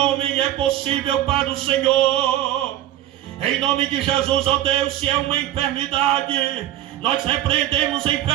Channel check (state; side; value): quieter; left; 12.9 dB